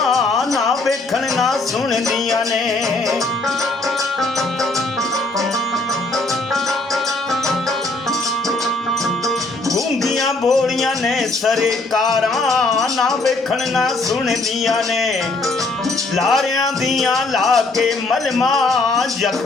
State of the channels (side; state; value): right; quieter; 3.2 dB